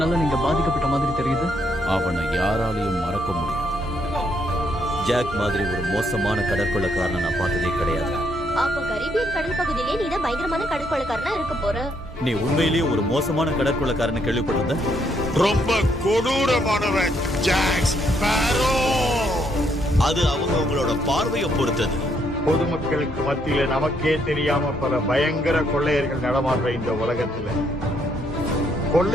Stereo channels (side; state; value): both; normal; correlation 0.73